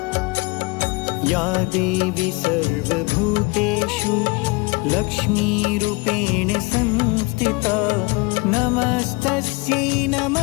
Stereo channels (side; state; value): right; quieter; 26.7 dB